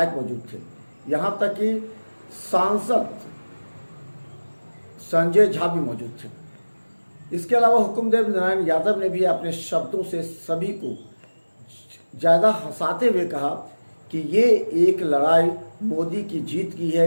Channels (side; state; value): both; inverted; correlation -1.00